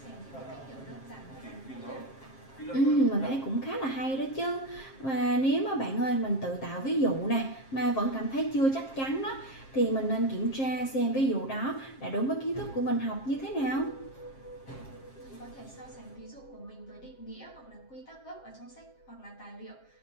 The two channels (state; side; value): late; right; 7.5 ms